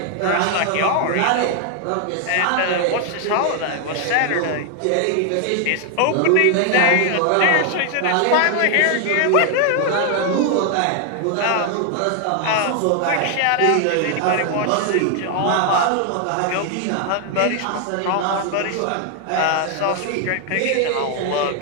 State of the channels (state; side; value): different; both; correlation 0.00